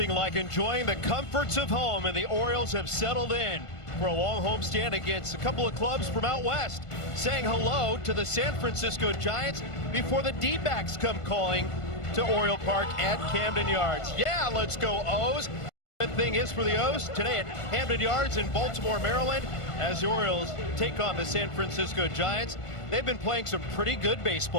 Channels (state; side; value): late; right; 1.5 ms